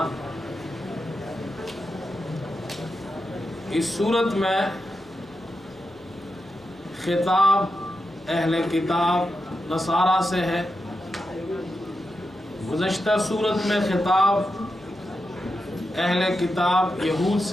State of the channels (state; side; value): noise; left; hum, 29 dB below the sound